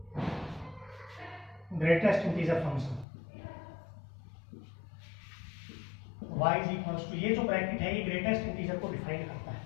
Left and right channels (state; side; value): drops out; right; at 3.1 s